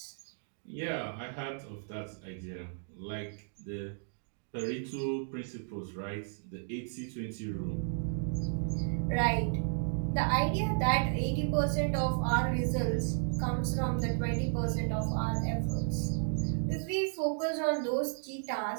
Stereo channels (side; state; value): left; silent; digital silence